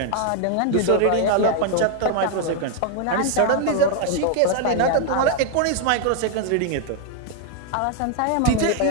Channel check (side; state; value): both; different; correlation 0.00